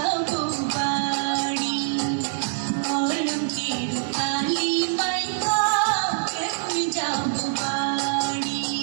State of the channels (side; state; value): left; silent; digital silence